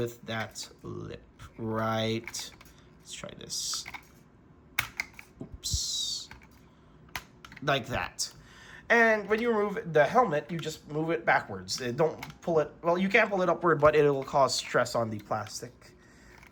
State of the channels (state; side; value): identical; both; correlation 1.00